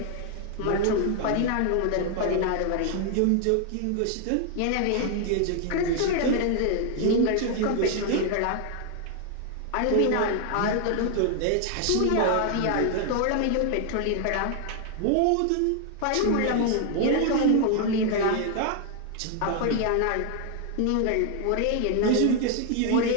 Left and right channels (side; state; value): both; different; correlation 0.00